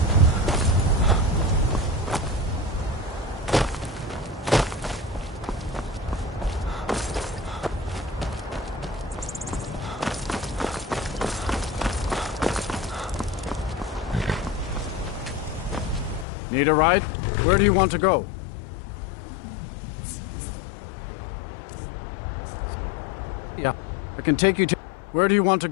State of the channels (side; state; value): right; drops out; at 16.2 s